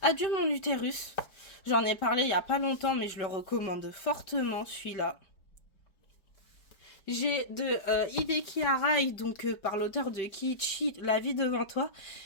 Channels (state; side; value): late; right; 5.2 ms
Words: Adieu mon utérus. J'en ai parlé il y a pas longtemps, mais je le recommande fortement celui-là. J'ai de Hideki Arai, donc par l'auteur de Kiichi, La vie devant toi.